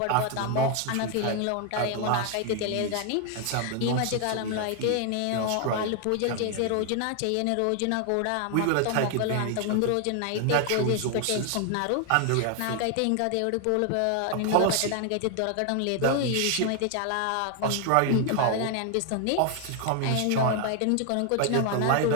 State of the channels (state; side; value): different; both; correlation 0.00